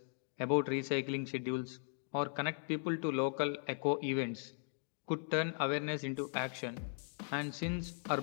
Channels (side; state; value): right; silent; 52 dB below the other